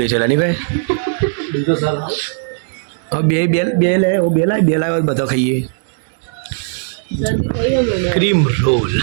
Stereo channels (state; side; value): silent; left; digital silence